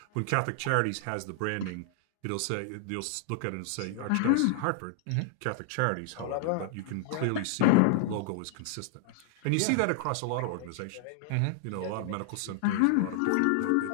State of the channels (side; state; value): both; different; correlation 0.00